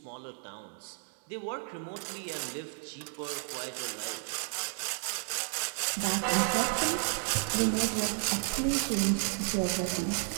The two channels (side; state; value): left; silent; 56 dB below the other